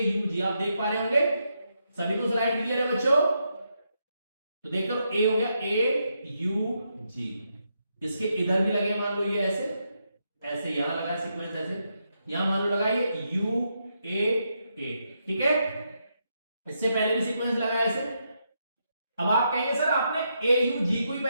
आप देख पा रहे होंगे। सभी को स्लाइड क्लियर है बच्चों? तो देख लो, A हो गया AUG। इसके इधर भी लगे, मान लो ये ऐसे, ऐसे यहां लगा सीक्वेंस ऐसे, यहां मान लो लगाइए UAA, ठीक है। इससे पहले भी सीक्वेंस लगाया ऐसे। अब आप कहेंगे सर आपने AUG को ही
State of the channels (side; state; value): both; inverted; correlation -0.81